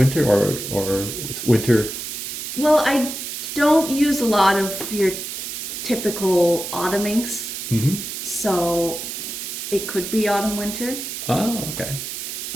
or winter? Well, I don't use a lot of your typical autumn inks. Mm-hmm. So it could be autumn, winter. Oh, okay.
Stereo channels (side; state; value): right; noise; hiss, 6 dB below the sound